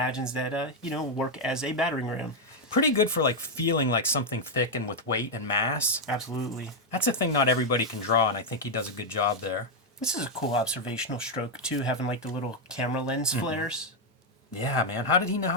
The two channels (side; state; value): both; normal; correlation 0.01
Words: that work as a battering ram. Pretty good for like feeling like something thick and with weight and mass. Absolutely. That's a thing not everybody can draw, and I think he does a good job there. This is a cool observational stroke too, having like the little camera lens flares. Yeah, man. How did he know